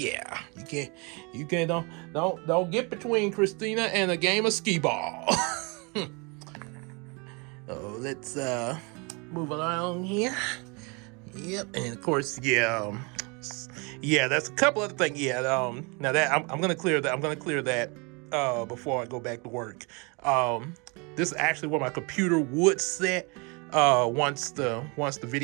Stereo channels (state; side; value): quieter; left; 30.3 dB